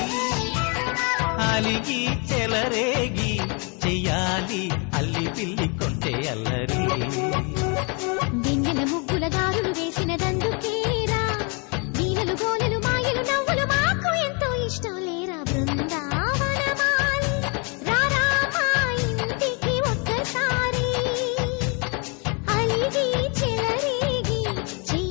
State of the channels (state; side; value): quieter; right; 33.9 dB